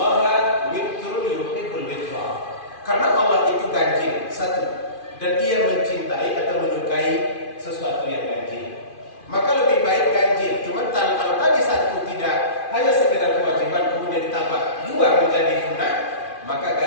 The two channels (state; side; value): late; right; 2.5 ms